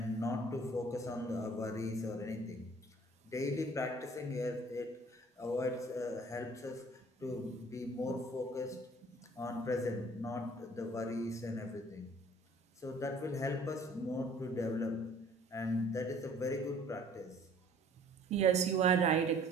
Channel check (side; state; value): both; normal; correlation 0.53